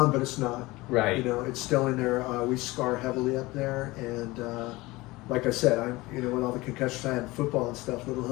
but it's not. Right. You know, it's still in there. We scar heavily up there, and like I said, you know, with all the concussions I had in football and stuff, little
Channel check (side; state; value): right; quieter; 20.9 dB